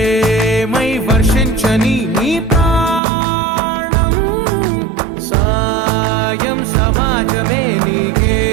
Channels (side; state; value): left; drops out; at 3.0 s